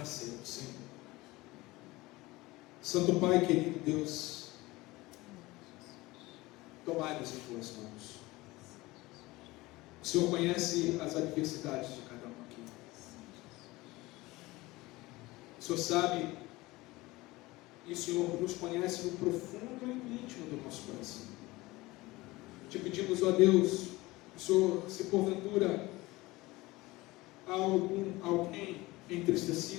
a ceia do Senhor. Santo Pai, querido Deus, tomai-nos em Tuas mãos. O Senhor conhece as adversidades de cada um aqui. O Senhor sabe, e o Senhor nos conhece no profundo e no íntimo do nosso coração. Te pedimos, ó Deus, o Senhor, se porventura há alguém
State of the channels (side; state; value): right; quieter; 20.4 dB